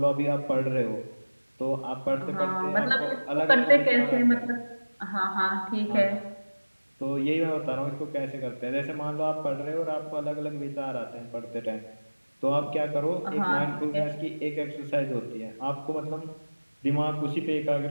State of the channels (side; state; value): both; inverted; correlation -1.00